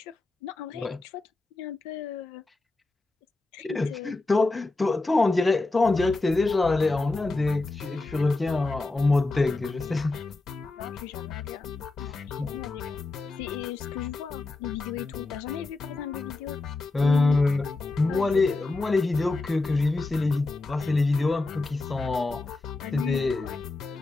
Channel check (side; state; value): right; quieter; 3.2 dB